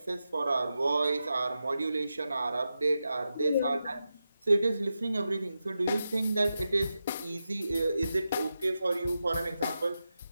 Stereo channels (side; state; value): both; inverted; correlation -0.90